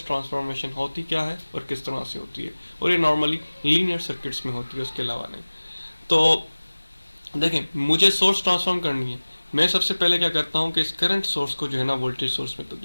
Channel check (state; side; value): inverted; both; correlation -1.00